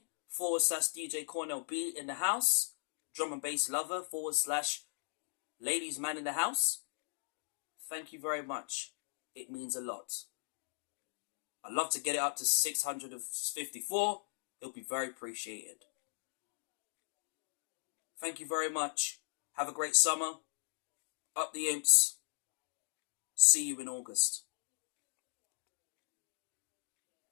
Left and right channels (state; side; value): silent; right; digital silence